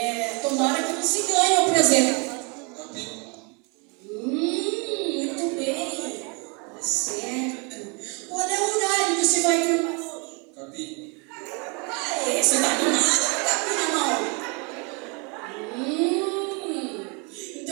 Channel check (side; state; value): left; quieter; 32.7 dB